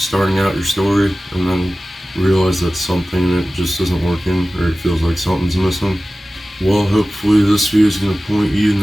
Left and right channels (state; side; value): normal; both; correlation 0.96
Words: out your story and then realize that something that just isn't working or it feels like something's missing? Well, hopefully this video is going to point you in